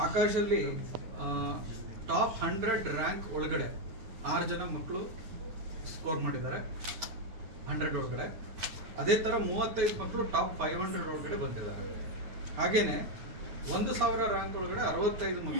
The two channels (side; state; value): left; late; 9.5 ms